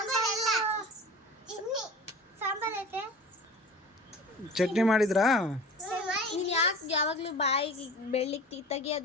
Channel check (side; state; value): both; normal; correlation 0.39